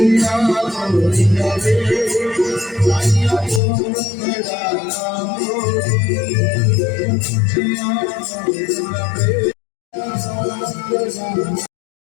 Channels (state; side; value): drops out; right; at 3.6 s